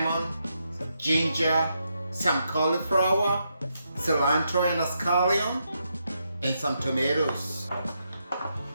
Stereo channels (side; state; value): both; inverted; correlation -0.81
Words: ginger, some cauliflower, cilantro and a scallion, and some tomatoes.